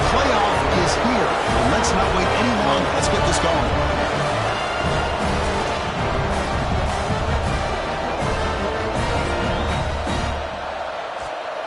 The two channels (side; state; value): both; identical; correlation 1.00